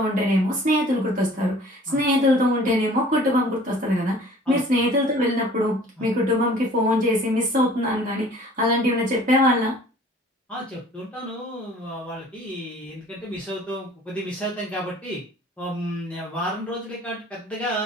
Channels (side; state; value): both; normal; correlation 0.50